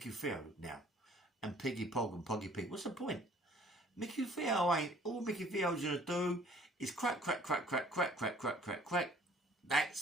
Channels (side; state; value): both; normal; correlation 0.55